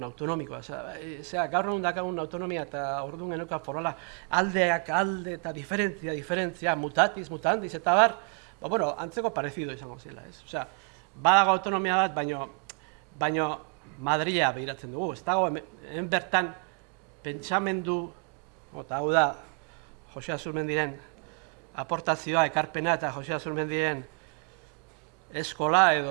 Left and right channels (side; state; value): left; quieter; 38.6 dB